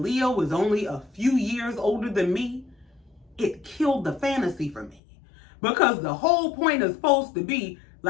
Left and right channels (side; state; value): right; drops out; at 5.0 s